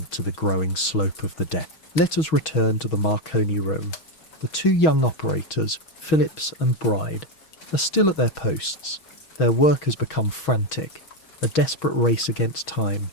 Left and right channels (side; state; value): right; late; 6.3 ms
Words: to the growing slope of the deck. Let us return to the Marconi room. The two young operators, Phillips and Bride, are still at their posts. Their work has become frantic, a desperate race against time.